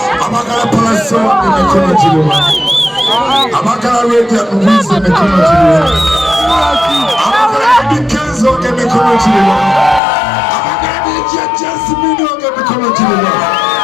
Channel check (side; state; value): right; drops out; at 10.0 s